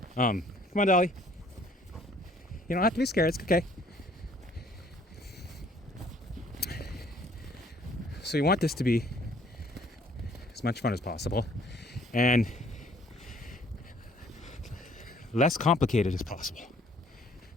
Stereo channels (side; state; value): both; normal; correlation 0.59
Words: Come on, Dolly. You don't have to be scared. It's okay. So you want this to be as much fun as possible and less complicated as possible.